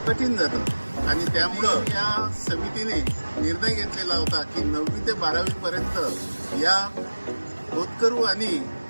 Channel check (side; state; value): both; inverted; correlation -1.00